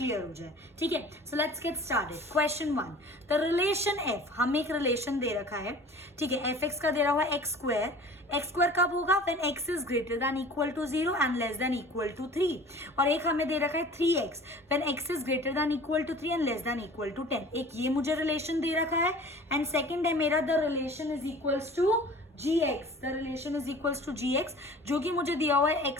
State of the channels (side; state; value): both; normal; correlation 0.44